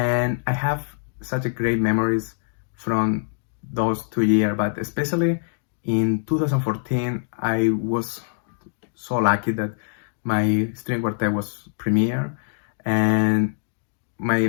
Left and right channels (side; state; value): right; silent; digital silence